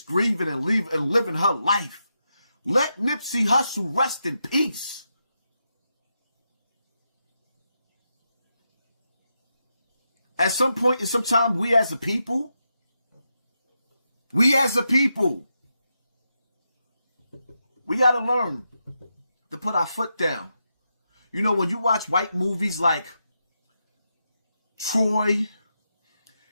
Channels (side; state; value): both; inverted; correlation -0.85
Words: grieving and living her life. Let Nipsey Hussle rest in peace. At some point in some time, we as a people, we got to learn to put our foot down. You know, when you watch white movies like Troy